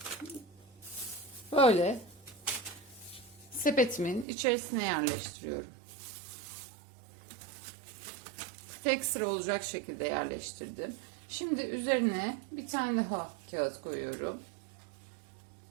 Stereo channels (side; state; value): left; drops out; at 4.2 s